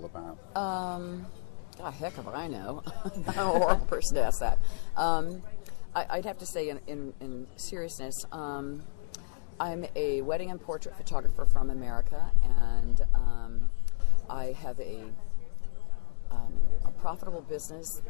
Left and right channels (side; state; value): right; silent; 58 dB below the other